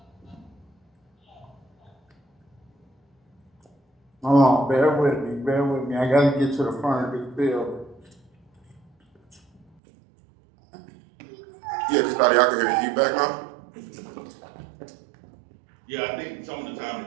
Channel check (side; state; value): left; drops out; at 9.7 s